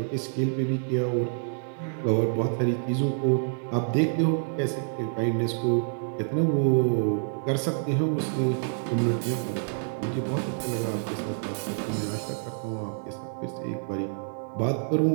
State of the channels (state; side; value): silent; left; digital silence